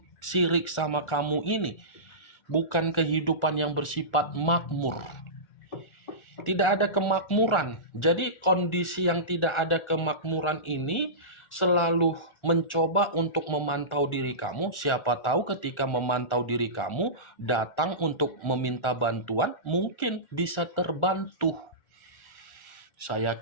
sama kamu ini bukan kehidupan yang bersifat makmur. Tidak ada kemakmuran. Jadi kondisi yang tidak ada kemakmuran ini selalu mencoba untuk memantau diri kamu. Siapa tahu ketika memantau diri kamu, datang untuk meminta bantuan, mungkin bisa terbantu. Saya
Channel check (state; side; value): late; right; 1.4 ms